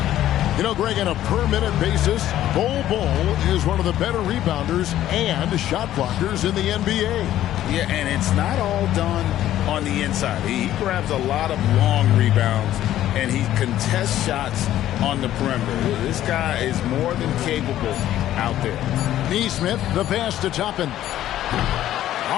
You know, Greg, on a per-minute basis, Bol is one of the better rebounders and shot blockers in the NBA. Yeah, and it's not all done on the inside. He grabs a lot of long rebounds, and he contests shots on the perimeter. This guy is more than capable out there. Neesmith, the pass to Toppin.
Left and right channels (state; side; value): quieter; right; 12.8 dB